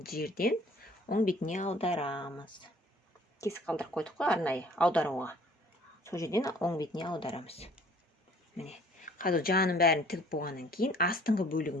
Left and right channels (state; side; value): normal; both; correlation 0.55